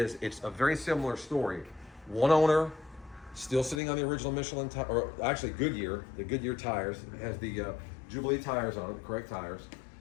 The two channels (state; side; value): drops out; right; at 3.8 s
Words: it's a very similar story. One owner, still sitting on the original Michelin, or actually Goodyear, the Goodyear tires. It has the Jubilee tires on it, the correct tires.